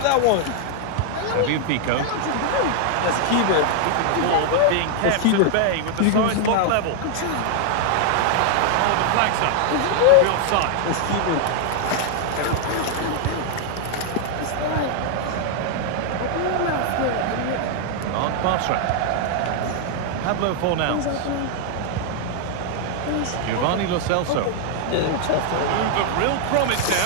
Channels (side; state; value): both; different; correlation 0.00